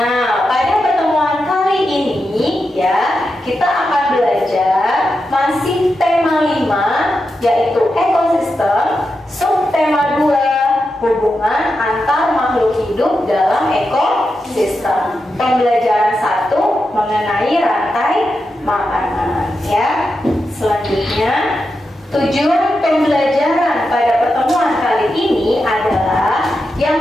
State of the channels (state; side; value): normal; both; correlation 0.88